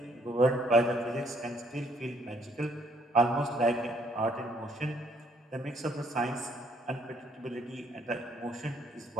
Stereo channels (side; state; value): both; normal; correlation 0.67